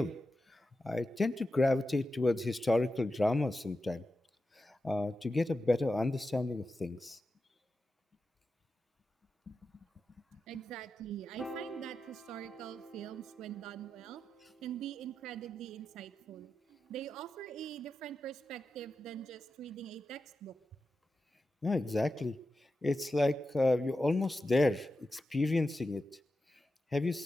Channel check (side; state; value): both; normal; correlation 0.91